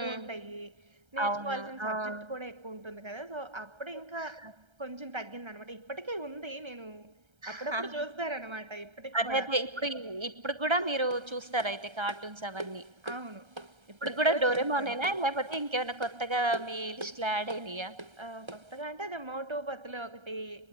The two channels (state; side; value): late; left; 1.3 ms